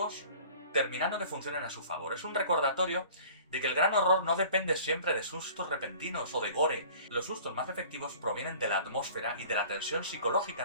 terminando que funcionen a su favor. Es un recordatorio de que el gran horror no depende siempre de sustos repentinos o de gore. Los sustos más efectivos provienen de la atmósfera y de la tensión psicológica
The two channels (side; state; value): both; inverted; correlation -0.47